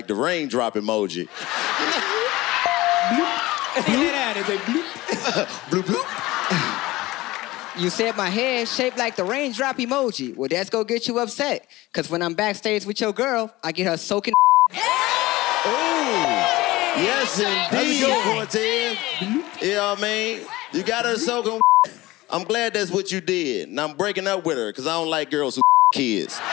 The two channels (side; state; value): right; quieter; 19.0 dB